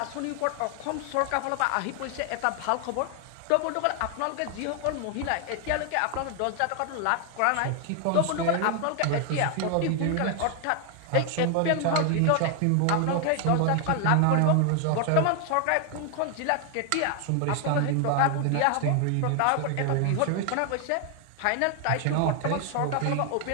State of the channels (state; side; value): different; both; correlation 0.00